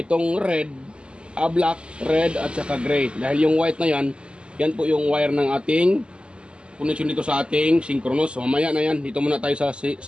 itong red, black, red at saka gray. Dahil yung white na yan, yan po yung wire ng ating connection dito sa ating synchronous. So mamaya na yan, dito muna tayo sa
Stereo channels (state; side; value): late; left; 0.051 ms